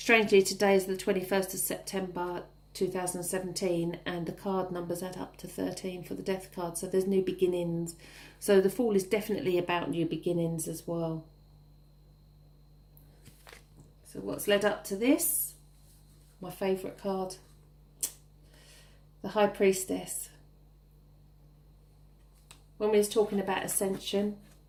today is the 21st of September 2017, and the card numbers add up to 13 for the Death card, so there's new beginnings. So the Fool is definitely about new beginnings as well. So what's led up to this? My favourite card, the High Priestess. When we was talking about ascension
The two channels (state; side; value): identical; both; correlation 1.00